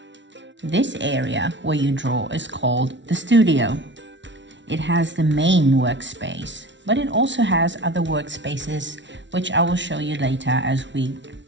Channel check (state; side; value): late; left; 0.53 ms